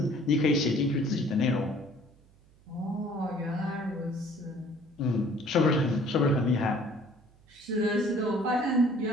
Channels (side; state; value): right; noise; hum, 29 dB below the sound